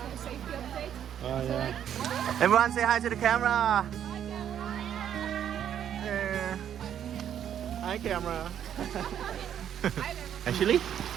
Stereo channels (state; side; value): quieter; left; 9.6 dB